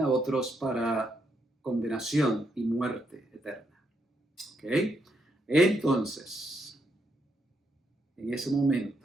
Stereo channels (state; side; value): normal; both; correlation 0.78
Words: otros para condenación y muerte eterna. ¿Ok? Entonces, en ese